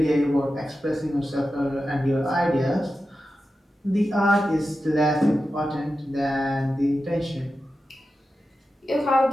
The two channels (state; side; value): normal; both; correlation 0.92